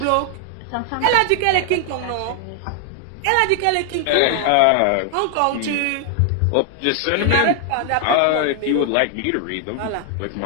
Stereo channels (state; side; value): different; both; correlation 0.00